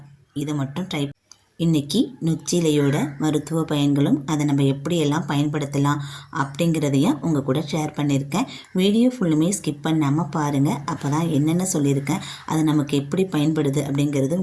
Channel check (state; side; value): identical; both; correlation 1.00